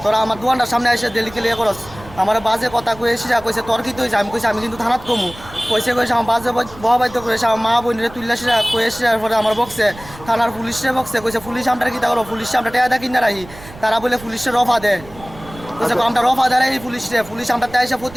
তোরা আমার দোকানটার সামনে এসে ডেলি ক্লিয়ার করস আমার বাজে কথা কয়ে এসে কইছে তোর কি তুই আমি কইছি আমি কিন্তু থানাত কমু কইছে আমার বাজে বহাবাদ্য করেছে আমার মা বোনের তুললাসে কয়ে এসে পরে আমার বক্সে থানার পুলিশে বক্সে কইছে পুলিশ আমরা কি তা করো পুলিশ আমরা টেয়া কিনা রাখি তারা বলে পুলিশের রফা দেয় কইছে আমরা রফা দেয় এই পুলিশ আমরা তাই এসে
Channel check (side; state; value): right; noise; rumble, 18 dB below the sound